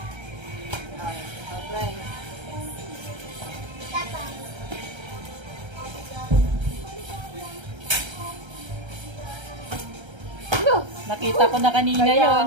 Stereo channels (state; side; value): late; left; 1.3 ms